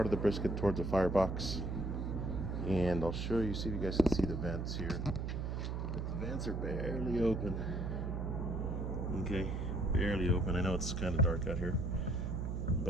of the brisket towards the firebox. And I'll show you, see if you guys can see the vents here. The vents are barely open. Okay, barely open. I know it's kind of dark out here.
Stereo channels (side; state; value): right; noise; hum, 2 dB below the sound